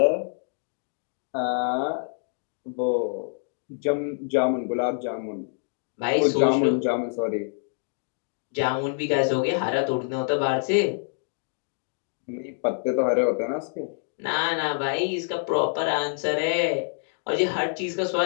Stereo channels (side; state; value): right; silent; digital silence